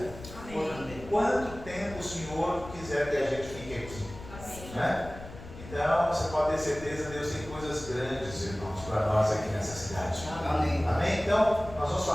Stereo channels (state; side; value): noise; left; rumble, 14 dB below the sound